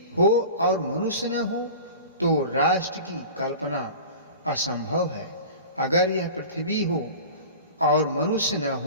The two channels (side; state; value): both; inverted; correlation -0.37